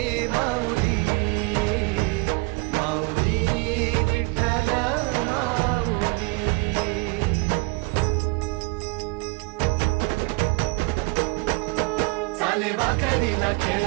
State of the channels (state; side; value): quieter; left; 27.6 dB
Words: माऊली माऊली विठ्ठल माऊली. चाले वाकरीला